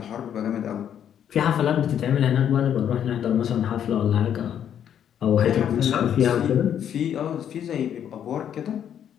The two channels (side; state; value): right; quieter; 9.4 dB